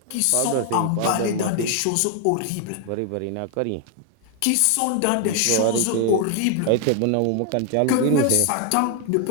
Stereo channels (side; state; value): both; different; correlation 0.00